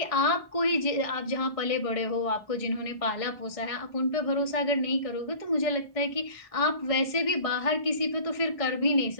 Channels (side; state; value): right; late; 1.6 ms